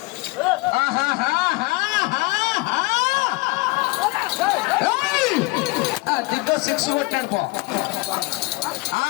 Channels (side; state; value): right; quieter; 24.9 dB